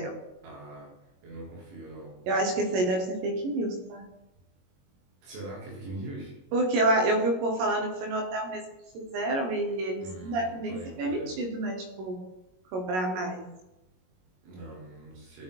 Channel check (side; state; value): left; late; 22 ms